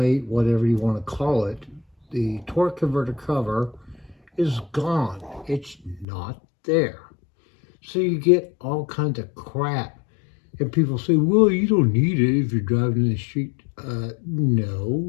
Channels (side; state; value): right; drops out; at 6.1 s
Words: whatever you want to call it, the torque converter cover is gone. It's not there. So you get all kinds of crap. And people say, well, you don't need it if you're driving in the street.